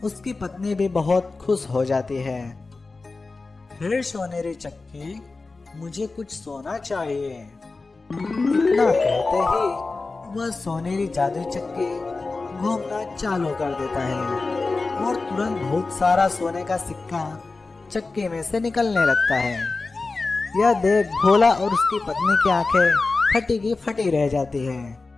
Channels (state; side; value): quieter; right; 3.7 dB